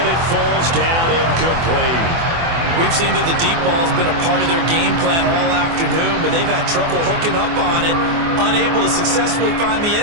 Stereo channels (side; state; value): left; late; 24 ms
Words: it falls down incomplete. We've seen that the deep ball's been a part of their game plan all afternoon, but they've had trouble hooking up on it, unable to successfully find the